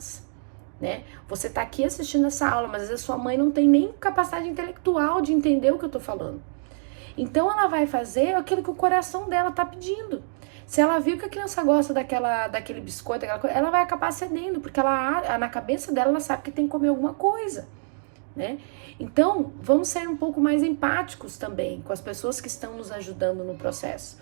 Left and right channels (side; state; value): left; silent; digital silence